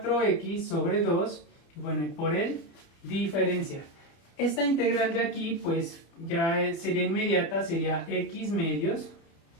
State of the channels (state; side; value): late; right; 30 ms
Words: sobre 2, bueno, y por el diferencial. Esta integral de aquí, pues, ya sería inmediata, sería x medios,